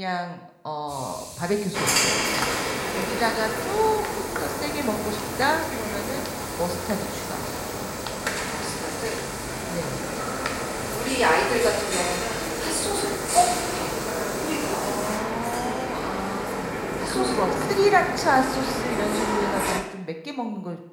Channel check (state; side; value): identical; both; correlation 1.00